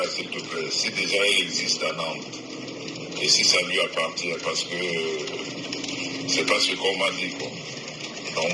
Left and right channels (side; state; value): both; identical; correlation 1.00